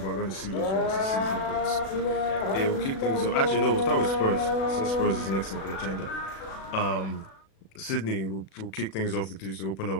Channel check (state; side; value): late; right; 36 ms